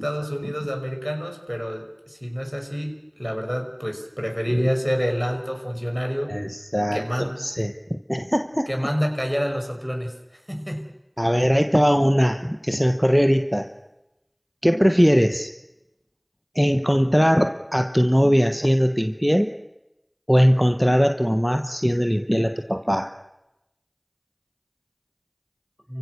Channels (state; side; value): identical; both; correlation 1.00